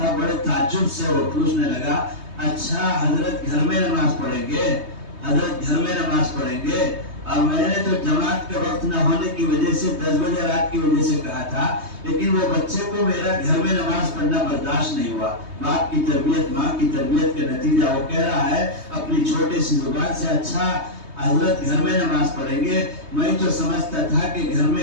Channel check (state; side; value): late; left; 3.2 ms